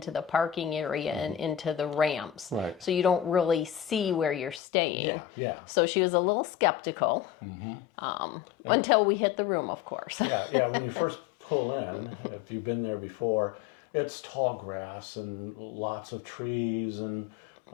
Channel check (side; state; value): right; drops out; at 4.6 s